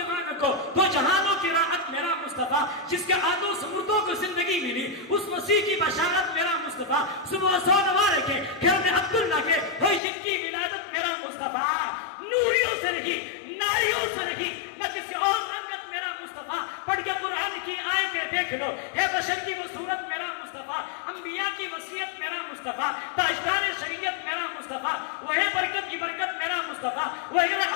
کو، دو جہانوں کی راحت میرا مصطفیٰ، جس کے آدھوں سمردوں کو زندگی ملی اس مسیح کی بشارت میرا مصطفیٰ، صبح سو نوارے کے گھر میں عبداللہ کے ہوئی جن کی ولادت میرا مصطفیٰ، نوریوں سے نہیں ناریوں سے نہیں نہ کسی اور رنگت میرا مصطفیٰ، پڑھ کے قرآن کی آیتیں دیکھ لو ہے بشر کی وہ صورت میرا مصطفیٰ، انبیاء کی وصیت میرا مصطفیٰ، تاجدار شریعت میرا مصطفیٰ، وہی برکت کی برکت میرا مصطفیٰ، وہی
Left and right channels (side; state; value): right; drops out; at 10.0 s